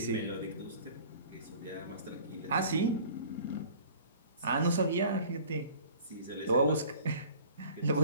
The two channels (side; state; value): both; inverted; correlation -0.48